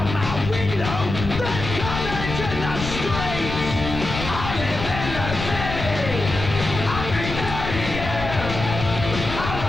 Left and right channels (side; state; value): left; noise; rumble, 6 dB below the sound